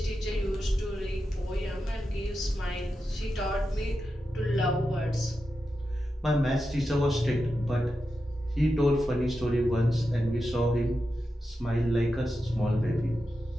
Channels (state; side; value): normal; both; correlation 0.89